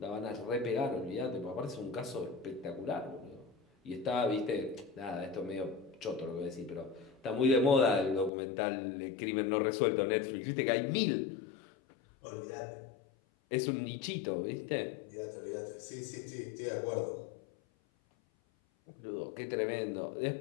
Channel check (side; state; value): right; drops out; at 8.3 s